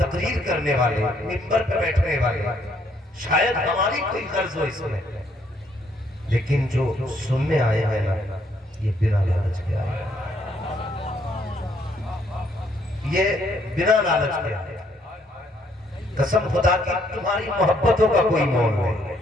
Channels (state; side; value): normal; both; correlation 0.69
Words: کرنے والے، منبر پہ بیٹھنے والے شاید ہماری کوئی غرض ہو اس میں، لیکن جو سننے آئے ہیں نا یہ بنا لالچ کے آئے ہیں، یہ بنا لالچ کے آئے ہیں۔ قسم خدا کی تمہاری محبتوں کا کوئی مول نہیں،